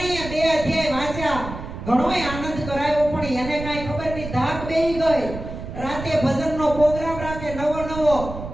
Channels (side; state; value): right; noise; rumble, 9 dB below the sound